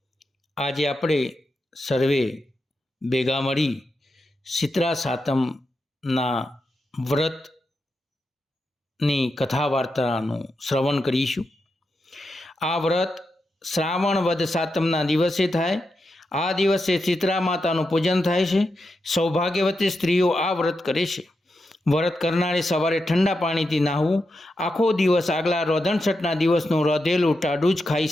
આજે આપણે સર્વે ભેગા મળી શીતળા સાતમના વ્રતની કથા વાર્તાનું શ્રવણ કરીશું। આ વ્રત શ્રાવણ વદ સાતમના દિવસે થાય। આ દિવસે શીતળા માતાનું પૂજન થાય છે। સૌભાગ્યવતી સ્ત્રીઓ આ વ્રત કરે છે। વ્રત કરનારે સવારે ઠંડા પાણીથી નાહવું। આખો દિવસ આગલા રોધણછઠના દિવસનું રોધેલું ટાઢું જ ખાઈ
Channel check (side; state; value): both; normal; correlation 0.87